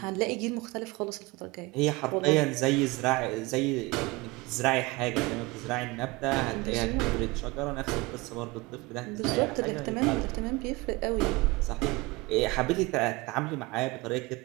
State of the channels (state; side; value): quieter; left; 23.1 dB